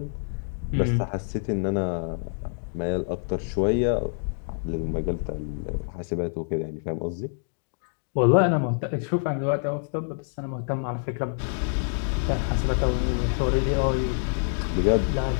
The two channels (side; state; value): right; silent; digital silence